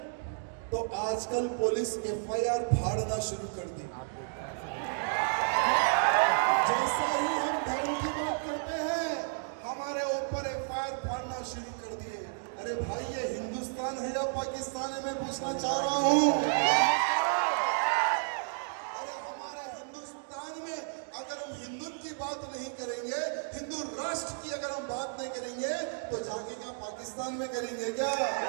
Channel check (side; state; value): left; silent; digital silence